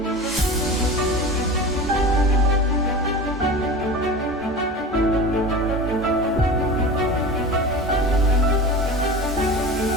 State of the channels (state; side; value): normal; both; correlation 0.33